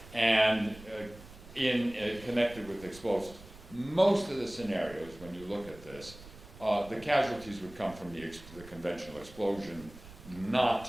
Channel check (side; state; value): right; noise; rumble, 18 dB below the sound